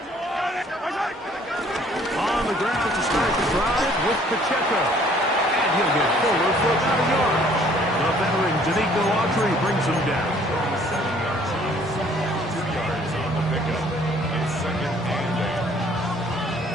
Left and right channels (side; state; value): both; normal; correlation 0.59